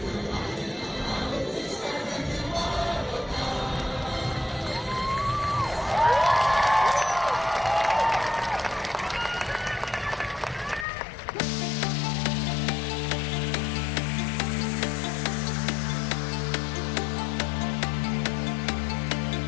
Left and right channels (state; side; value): drops out; right; at 10.9 s